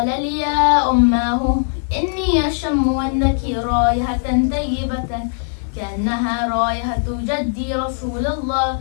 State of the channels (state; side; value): silent; right; digital silence